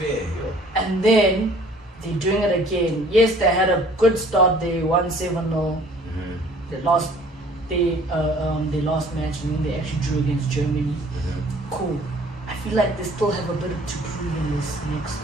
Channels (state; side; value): normal; both; correlation 0.54